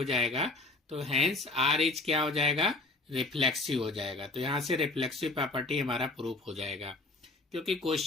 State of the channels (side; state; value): right; quieter; 3.0 dB